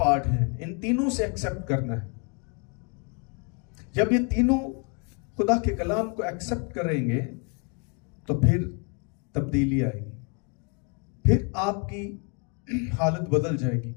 ہیں، ان تینوں سے ایکسپٹ کرنا ہے. جب یہ تینوں خدا کے کلام کو ایکسپٹ کریں گے تو پھر تبدیلی آئے گی، پھر آپ کی حالت بدل جائے گی.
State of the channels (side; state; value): right; quieter; 36.1 dB